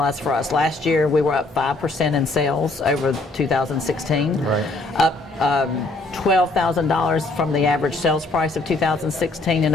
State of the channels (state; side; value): quieter; right; 3.0 dB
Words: for us. Last year we were up 5% in sales over 2016, up $12,000 from the average sales price of 2016